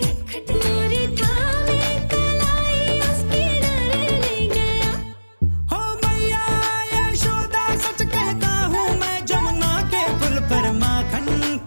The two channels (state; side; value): inverted; both; correlation -1.00